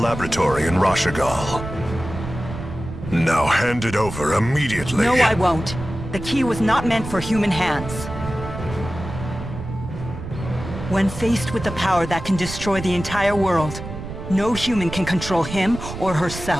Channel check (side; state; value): right; noise; rumble, 9 dB below the sound